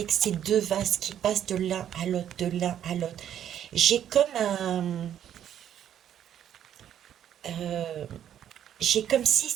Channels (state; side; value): quieter; left; 10.2 dB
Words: ces deux vases qui passent de l'un à l'autre, de l'un à l'autre. J'ai comme euh, j'ai comme si